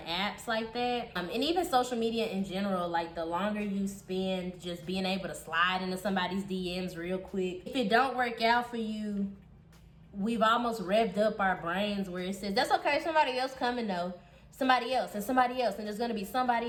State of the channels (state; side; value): identical; both; correlation 1.00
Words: like that, and even social media in general, like the longer you spend just being able to slide into somebody's DMs real quick, if it don't work out for you, we've almost revved up our brains where it says, that's okay, somebody else coming though. Somebody else, and there's gonna be